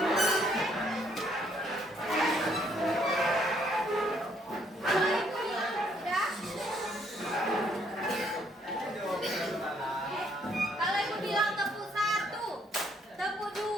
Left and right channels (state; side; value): normal; both; correlation 0.68